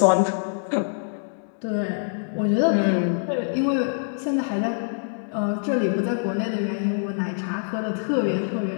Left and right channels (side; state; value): right; silent; digital silence